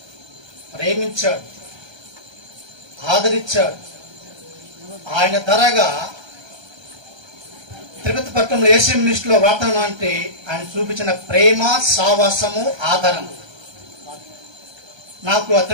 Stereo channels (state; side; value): late; left; 1.3 ms